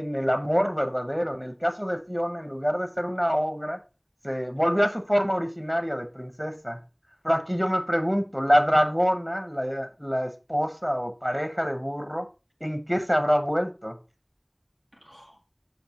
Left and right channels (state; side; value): identical; both; correlation 1.00